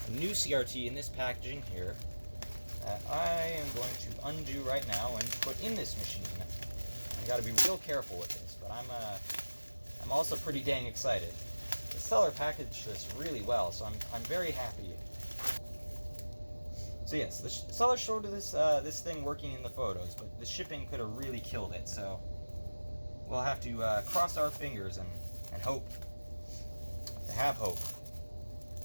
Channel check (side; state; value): both; inverted; correlation -1.00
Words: a new CRT in this packaging here that I am going to undo right now and put in this machine. I gotta be real careful with this, but I'm also pretty dang excited. The seller packaged this really well, so I'm very happy. So yes, the seller showed this thing working in the photos, but the shipping could have really killed it, so we'll have to cross our fingers and hope. To have hope.